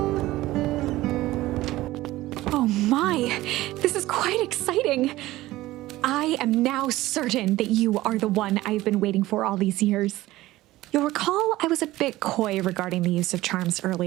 Oh my, this is quite exciting. I am now certain that you are the one I've been waiting for all these years. You'll recall I was a bit coy regarding the use of charms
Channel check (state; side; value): quieter; left; 17.1 dB